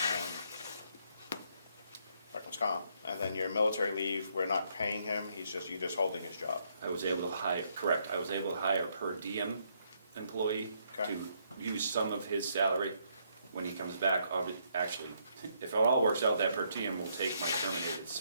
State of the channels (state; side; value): inverted; both; correlation -0.72